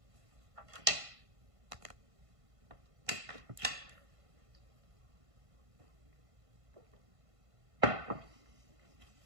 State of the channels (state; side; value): late; left; 1.5 ms